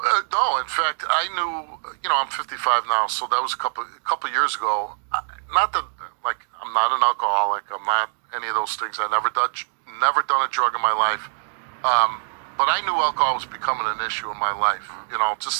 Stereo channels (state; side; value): silent; left; 63 dB below the other